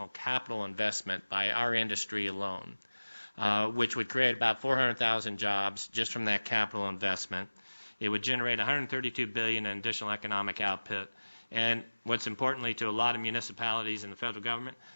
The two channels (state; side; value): inverted; both; correlation -1.00